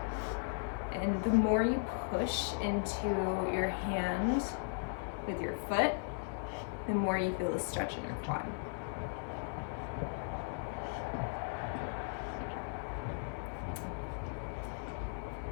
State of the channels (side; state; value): right; silent; digital silence